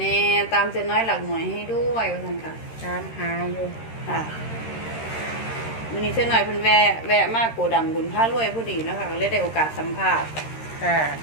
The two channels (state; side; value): late; right; 13 ms